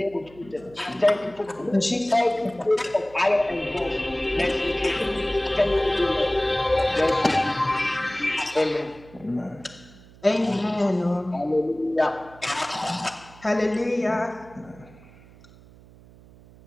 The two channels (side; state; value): right; noise; hum, 23 dB below the sound